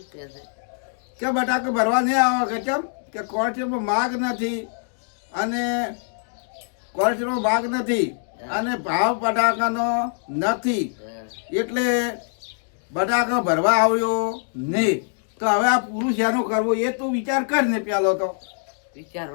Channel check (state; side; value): silent; right; digital silence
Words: કહે છે કે બટાકા ભરવા નહીં આવો કે કેમ કે કોર્ટમાં માગ નથી અને કોર્ટમાં માગ નથી અને ભાવ બટાકાનો નથી હા એટલે બટાકા ભરવા આવ્યો નહીં તો હવે આ પૂરું શેનું કરવું એ તું વિચાર કર ને પેલો તો